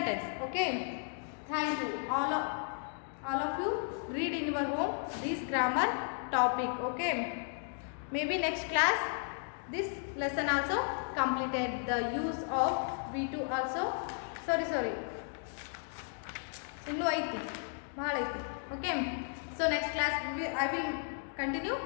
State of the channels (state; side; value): silent; right; 55 dB below the other